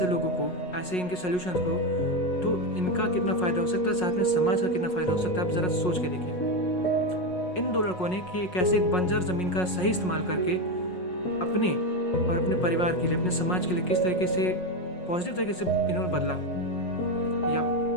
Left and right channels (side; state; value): right; late; 5.5 ms